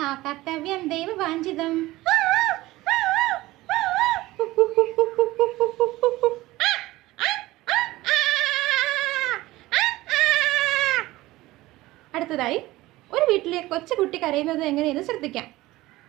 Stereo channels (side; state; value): left; quieter; 18.2 dB